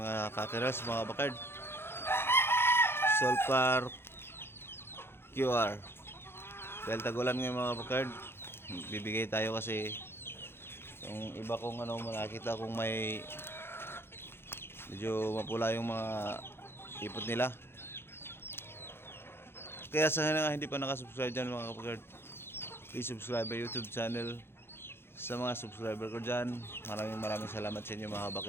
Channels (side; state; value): right; late; 0.11 ms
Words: kakeras mga bakard. Sulfur QR. Dahil tagulan ngayon mga bakard, bibigay tayo kasi yung iba kong nakita kong may medyo mapula yung mga ipot nila. Kaya sa nga hindi pa nakasubscribe dyan mga bakard, please subscribe my YouTube channel. Sa mga subscriber ko dyan, maraming salamat sa inyo mga